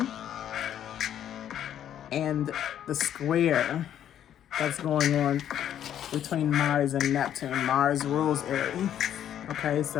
And the square that's going on between Mars and Neptune. Mars rules Aries. Okay,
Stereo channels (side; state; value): right; quieter; 10.4 dB